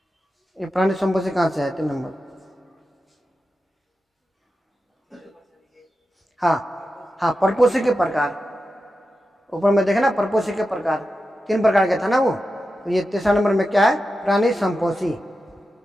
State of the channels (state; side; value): normal; both; correlation 0.91